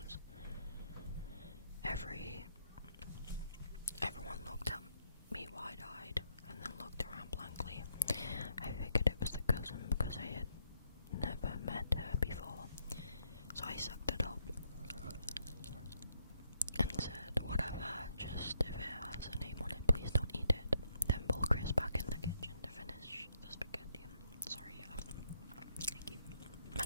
Everyone looked at me wide-eyed and then looked around blankly. I figured it was the cousin because I had never met her before, so I sucked it up and said, whatever, just if it has a name on it, please don't eat it. Then pull Chris back in the kitchen to finish the spaghetti. Sorry, I keep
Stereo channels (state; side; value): inverted; both; correlation -0.74